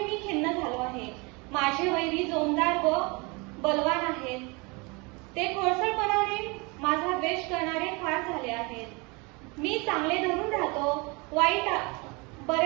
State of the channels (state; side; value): quieter; left; 28.1 dB